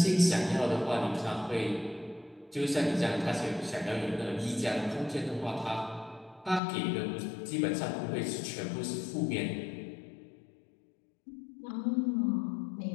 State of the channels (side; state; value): right; drops out; at 6.6 s